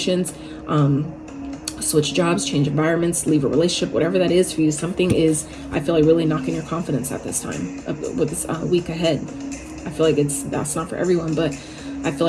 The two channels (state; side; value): identical; both; correlation 1.00